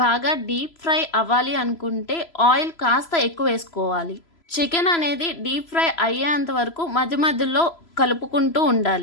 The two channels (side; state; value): right; late; 3.0 ms